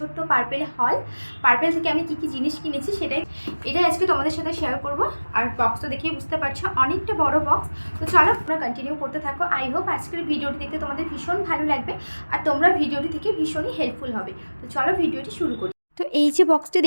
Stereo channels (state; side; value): inverted; both; correlation -1.00